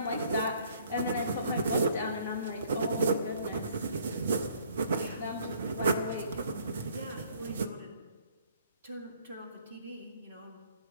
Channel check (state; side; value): inverted; both; correlation -0.60